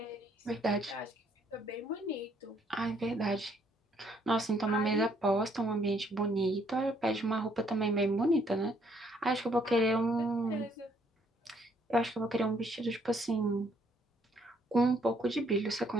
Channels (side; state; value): both; normal; correlation 0.67